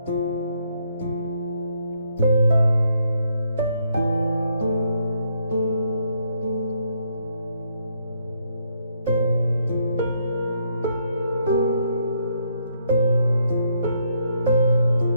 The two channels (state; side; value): inverted; both; correlation -0.74